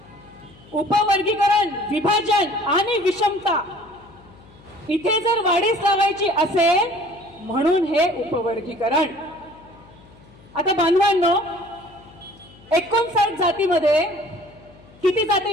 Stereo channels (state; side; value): noise; left; hum, 25 dB below the sound